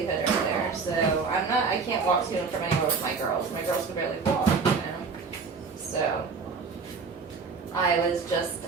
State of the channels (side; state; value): left; quieter; 5.0 dB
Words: right there. So I can't walk to and from anywhere with my girls. My girls can barely walk. I was just